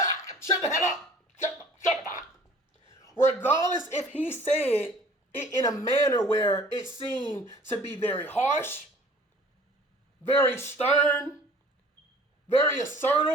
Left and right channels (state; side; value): normal; both; correlation 0.50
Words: the hell up. Shut up. Regardless if he said it in a manner where it seemed to be very harsh, very stern, very